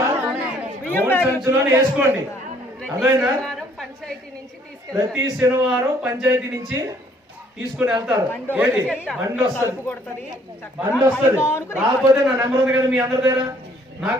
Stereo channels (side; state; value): both; normal; correlation 0.62